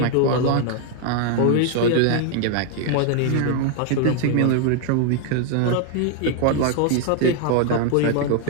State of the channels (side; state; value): both; different; correlation 0.00